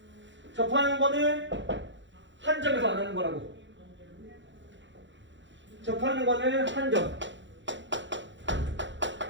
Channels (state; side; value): late; left; 0.54 ms